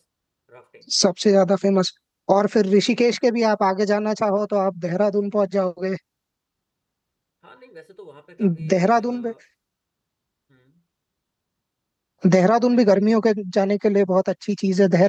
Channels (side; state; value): both; identical; correlation 1.00